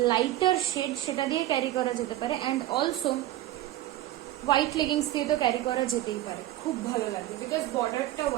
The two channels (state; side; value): quieter; left; 14.5 dB